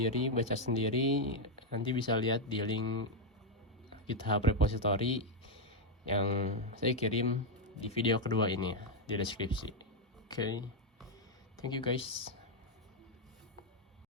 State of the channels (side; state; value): both; normal; correlation 0.02